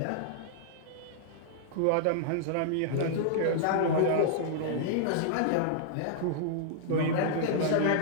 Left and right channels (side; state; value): both; different; correlation -0.01